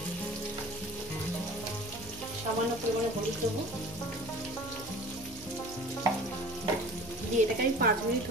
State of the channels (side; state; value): right; noise; hum, 18 dB below the sound